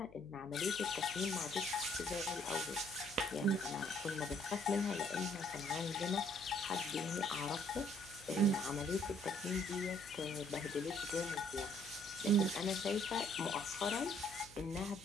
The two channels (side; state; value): left; noise; hum, 22 dB below the sound